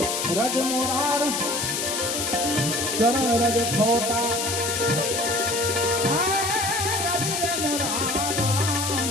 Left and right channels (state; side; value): noise; left; hiss, 1 dB below the sound